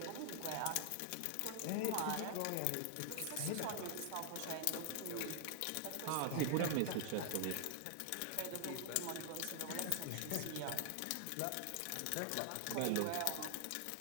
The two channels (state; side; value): different; both; correlation 0.00